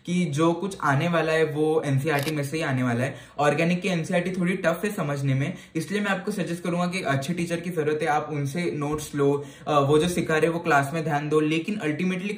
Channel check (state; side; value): identical; both; correlation 1.00